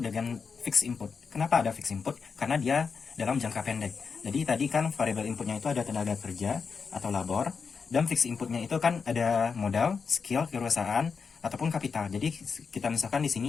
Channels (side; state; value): right; quieter; 5.5 dB